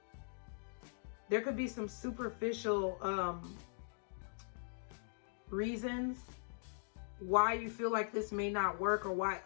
reasons why you feel like this may not work or why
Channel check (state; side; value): silent; right; digital silence